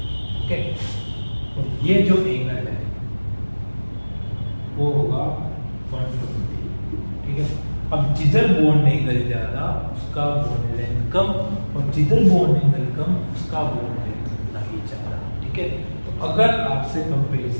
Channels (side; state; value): both; inverted; correlation -1.00